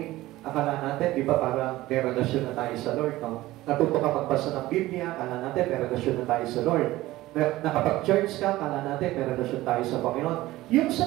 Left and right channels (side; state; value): left; quieter; 17.2 dB